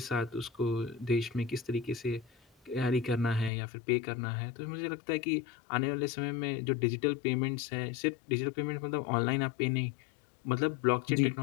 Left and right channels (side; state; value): right; drops out; at 3.5 s